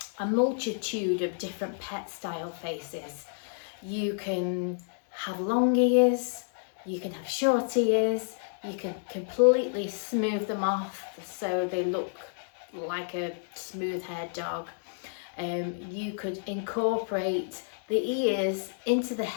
multitude of different pet style faces. You can have long ears, you can have short ears, you can completely smooth them off so they look like a smooth haired dog. You could incorporate the ears into the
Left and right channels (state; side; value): silent; right; digital silence